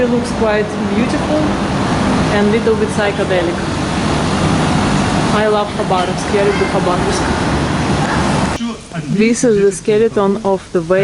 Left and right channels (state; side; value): identical; both; correlation 1.00